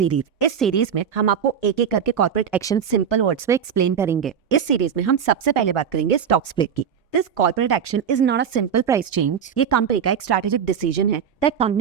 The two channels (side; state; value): left; quieter; 7.8 dB